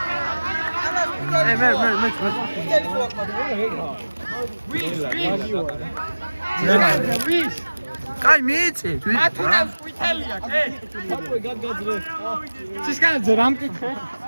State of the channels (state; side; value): inverted; both; correlation -1.00